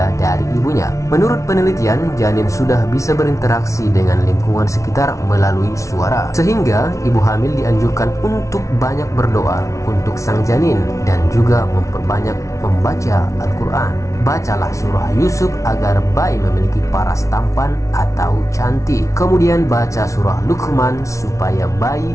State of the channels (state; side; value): late; right; 0.15 ms